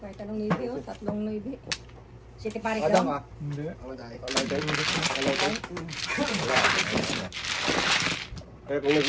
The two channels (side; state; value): both; identical; correlation 1.00